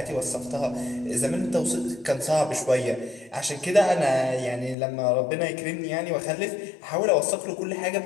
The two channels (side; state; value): right; drops out; at 4.8 s